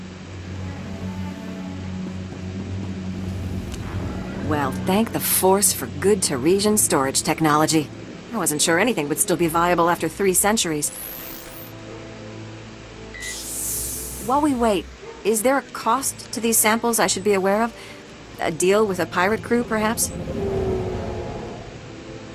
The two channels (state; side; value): identical; both; correlation 1.00